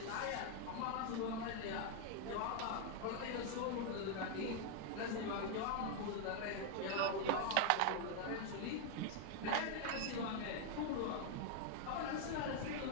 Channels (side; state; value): both; different; correlation 0.00